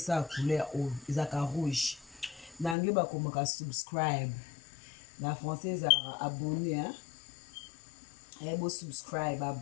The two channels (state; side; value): drops out; right; at 2.8 s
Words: couleur ezaka rouge na anglais bakomaka subscribe na français ezalaka abonné bosubscribe